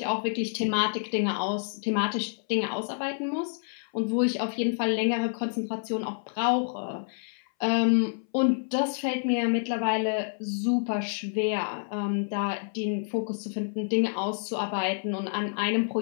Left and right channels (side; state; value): right; silent; 59 dB below the other